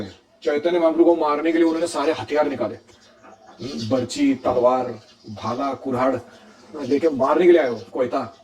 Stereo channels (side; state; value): both; identical; correlation 1.00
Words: चैतन्य महाप्रभु को मारने के लिए उन्होंने सारे हथियार निकाले, बर्ची, तलवार, भाला, कुल्हाड़ लेके मारने के लिए आए हो कोयता।